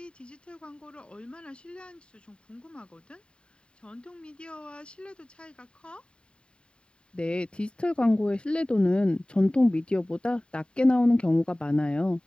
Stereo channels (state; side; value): late; right; 0.052 ms